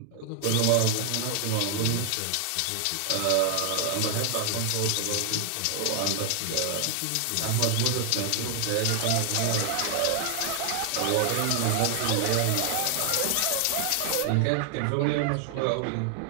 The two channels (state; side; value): different; both; correlation 0.00